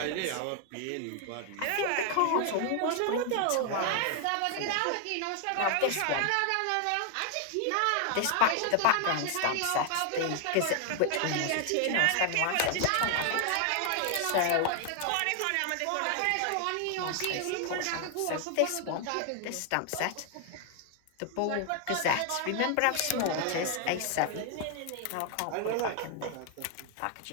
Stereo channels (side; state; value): both; different; correlation 0.00